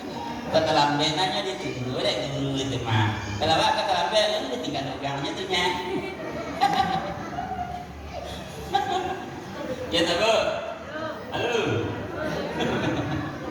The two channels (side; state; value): both; identical; correlation 1.00